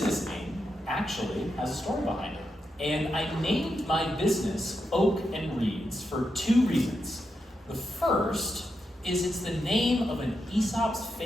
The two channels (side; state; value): both; normal; correlation 0.85